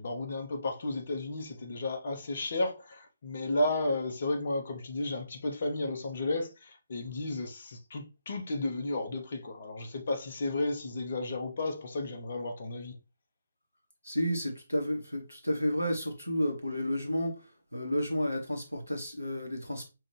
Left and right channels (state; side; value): inverted; both; correlation -0.85